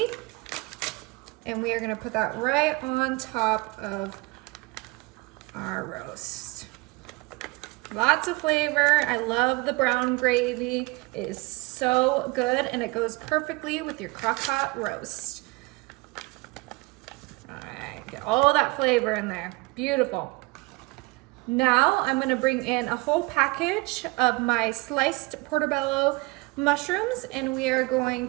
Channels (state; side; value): quieter; left; 25.1 dB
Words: and we are gonna put that right on top of our roast. Lots of flavor. I love the brown gravy. It is so good, and it goes perfectly with your crock pot roast. All right, get all that flavor in there. Beautiful. Now I'm gonna bring in a whole package of my sliced portobello mushrooms, and we are going